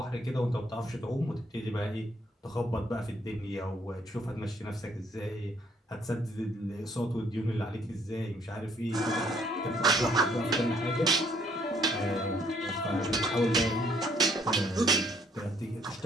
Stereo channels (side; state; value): both; normal; correlation 0.65